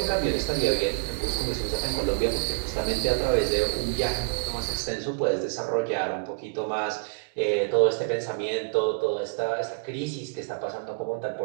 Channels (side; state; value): left; silent; digital silence